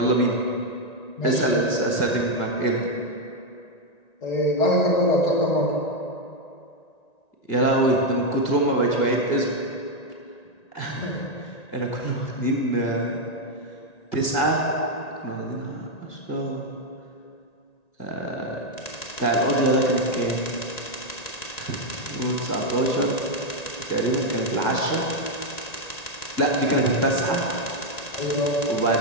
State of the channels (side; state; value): right; late; 1.9 ms